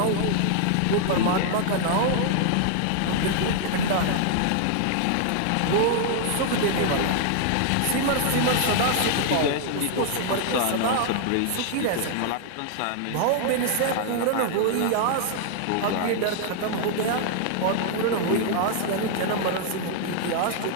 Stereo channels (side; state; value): both; different; correlation 0.00